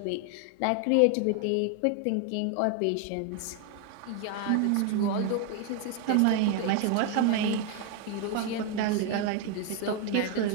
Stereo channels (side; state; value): both; different; correlation 0.01